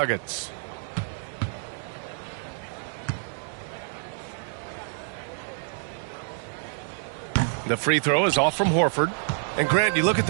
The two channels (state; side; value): silent; left; 60 dB below the other